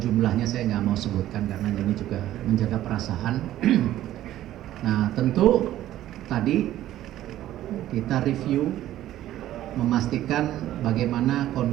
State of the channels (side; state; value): left; quieter; 13.4 dB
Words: saya nggak mau sebutkan karena ini juga menjaga perasaan. Nah, tentu tadi kita review memastikan bagaimana